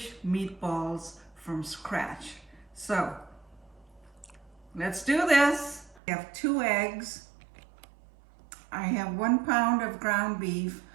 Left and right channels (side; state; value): left; drops out; at 6.0 s